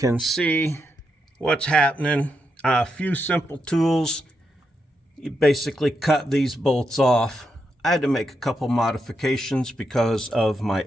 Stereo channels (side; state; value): both; normal; correlation 0.83